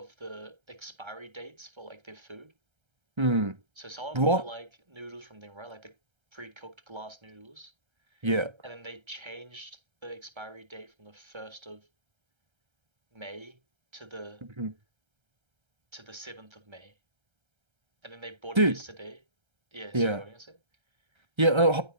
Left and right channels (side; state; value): left; late; 1.3 ms